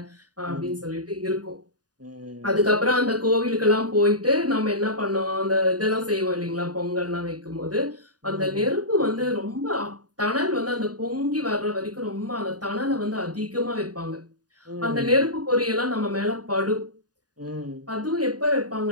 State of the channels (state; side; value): late; left; 0.68 ms